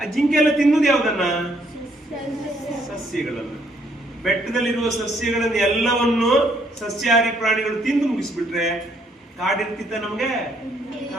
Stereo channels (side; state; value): both; normal; correlation 0.68